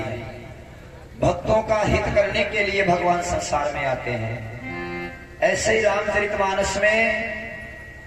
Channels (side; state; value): both; identical; correlation 1.00